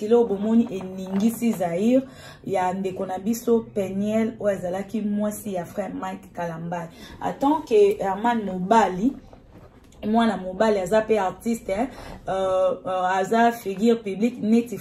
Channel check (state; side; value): identical; both; correlation 1.00